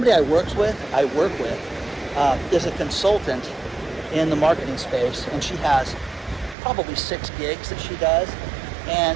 I work with is a consultant in the marketing space, and she has probably 6 gigs that she does.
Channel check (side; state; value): left; drops out; at 6.6 s